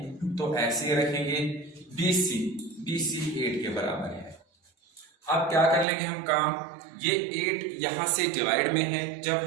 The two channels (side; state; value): left; drops out; at 5.9 s